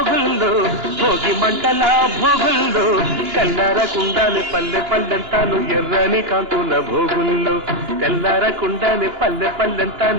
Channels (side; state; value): left; late; 2.9 ms